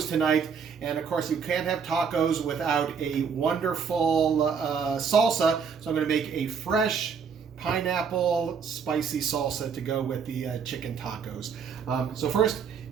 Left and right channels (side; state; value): left; quieter; 6.3 dB